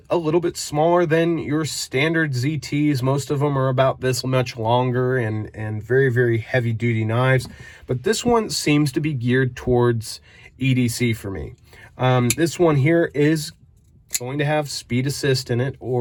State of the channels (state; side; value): identical; both; correlation 1.00